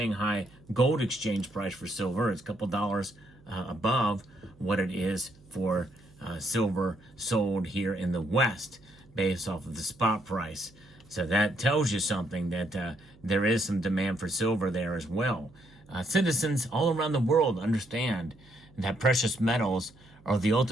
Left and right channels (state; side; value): noise; right; hum, 26 dB below the sound